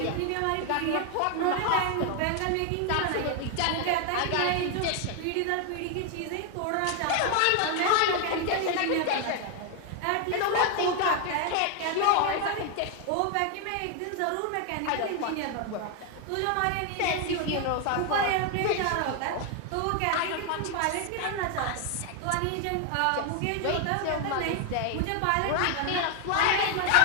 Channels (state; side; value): different; both; correlation 0.01